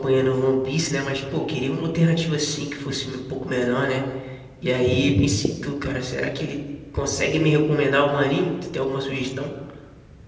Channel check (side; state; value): both; identical; correlation 1.00